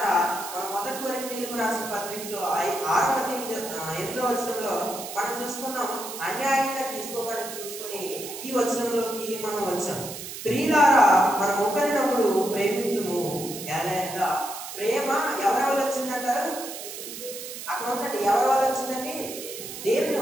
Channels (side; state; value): right; noise; hiss, 10 dB below the sound